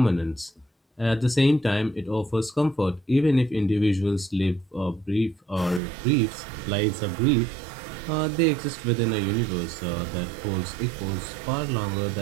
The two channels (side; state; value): left; drops out; at 5.8 s